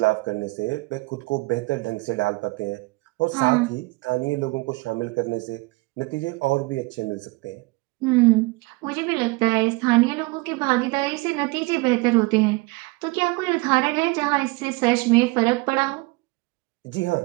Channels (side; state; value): left; quieter; 24.4 dB